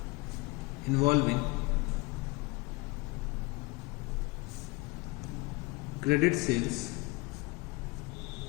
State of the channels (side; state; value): right; quieter; 24.8 dB